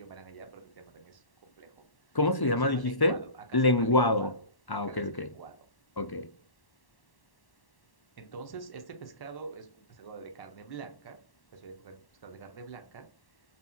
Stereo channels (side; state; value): right; late; 1.1 ms